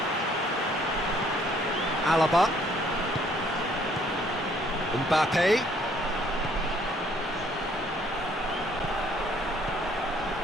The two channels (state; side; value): normal; both; correlation 0.63